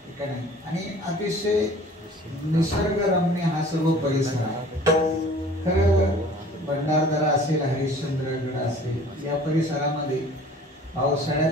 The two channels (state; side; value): normal; both; correlation 0.48